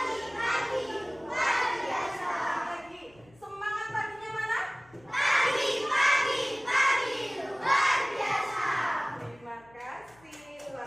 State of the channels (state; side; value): noise; left; hum, 28 dB below the sound